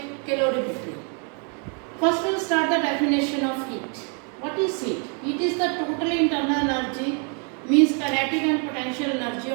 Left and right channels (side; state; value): left; quieter; 39.2 dB